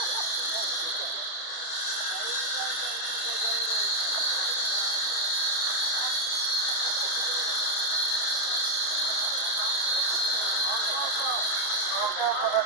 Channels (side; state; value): right; late; 30 ms